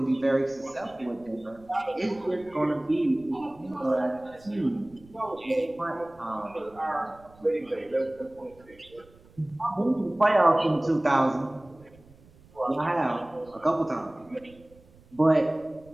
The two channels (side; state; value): right; noise; rumble, 26 dB below the sound